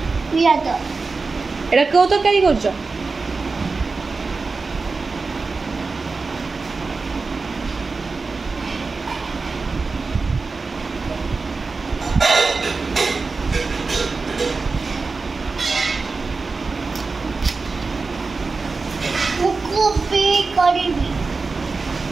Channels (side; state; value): left; quieter; 4.1 dB